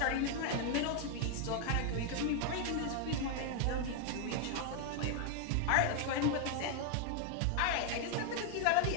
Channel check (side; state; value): both; different; correlation 0.00